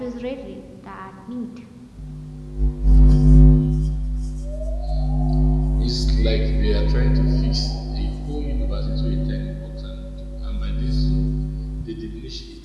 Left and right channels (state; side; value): identical; both; correlation 1.00